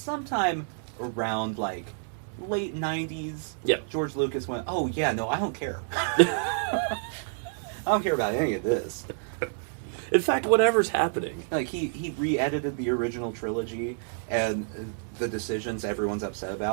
around like late 90s, Yeah. George Lucas went, "Oh yeah, no, I don't care. I don't care about any of this." In fact, whatever's happening. Like he re-edited the original trilogy and the decisions everyone's upset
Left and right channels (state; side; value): silent; left; digital silence